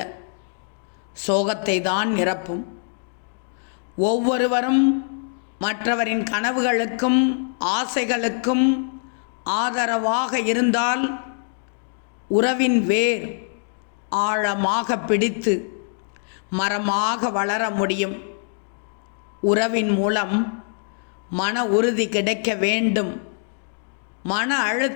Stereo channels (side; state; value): right; silent; 63 dB below the other